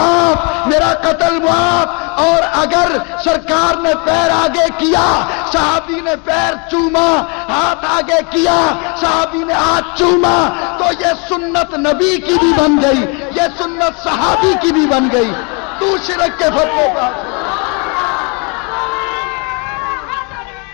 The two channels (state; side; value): quieter; right; 33.4 dB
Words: میرا قتل معاف۔ اور اگر سرکار نے پیر آگے کیا، صحابی نے پیر چوما، ہاتھ آگے کیا، صحابی نے ہاتھ چوما، تو یہ سنت نبی کی بھی بن گئی، یہ سنت صحابی کی بھی بن گئی۔ تو شرک کے فتوے پر